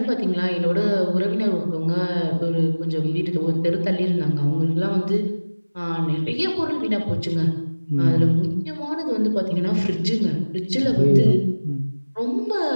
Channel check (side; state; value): both; inverted; correlation -1.00